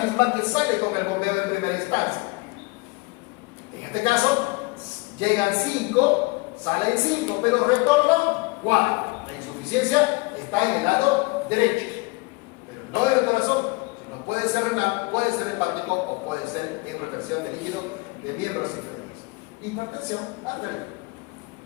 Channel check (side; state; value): right; quieter; 25.8 dB